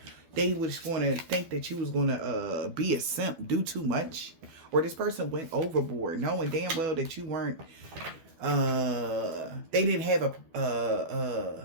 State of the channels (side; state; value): left; late; 12 ms